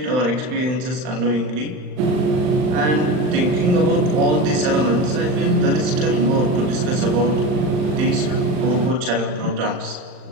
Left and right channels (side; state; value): left; late; 39 ms